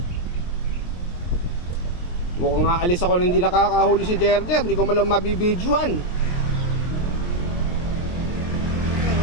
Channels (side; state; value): right; late; 23 ms